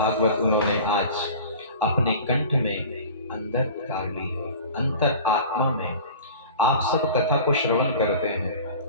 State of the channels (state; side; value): inverted; both; correlation -0.40